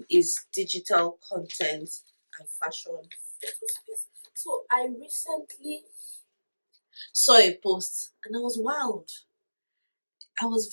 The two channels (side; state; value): both; inverted; correlation -1.00